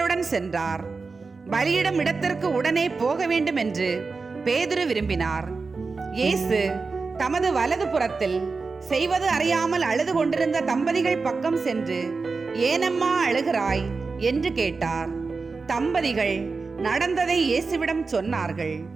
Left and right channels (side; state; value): left; quieter; 4.3 dB